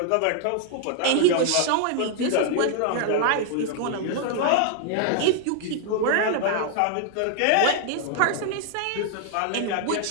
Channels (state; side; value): different; both; correlation 0.00